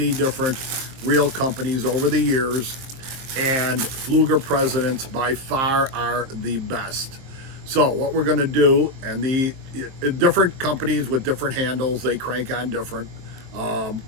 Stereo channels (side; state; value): left; late; 23 ms